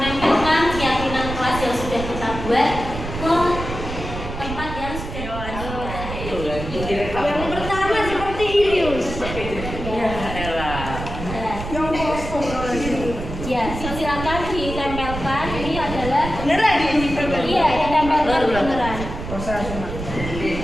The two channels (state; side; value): noise; right; rumble, 7 dB below the sound